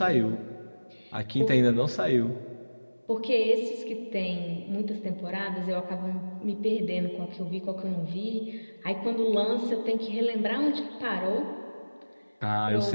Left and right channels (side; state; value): both; inverted; correlation -1.00